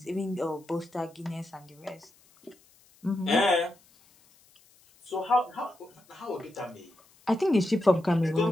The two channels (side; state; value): left; noise; hiss, 30 dB below the sound